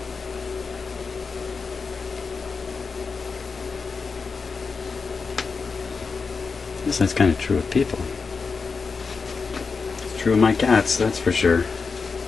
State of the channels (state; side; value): quieter; right; 4.9 dB